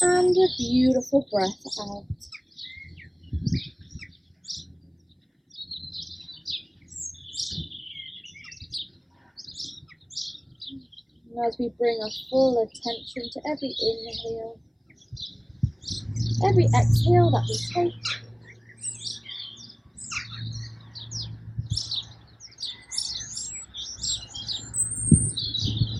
and a beautiful breath out. And as we bring our full attention to every inhale, every exhale that we take,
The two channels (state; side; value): identical; both; correlation 1.00